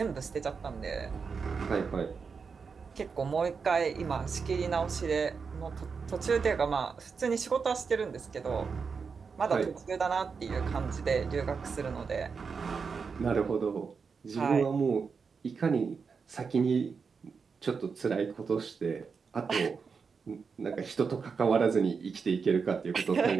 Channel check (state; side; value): quieter; left; 5.4 dB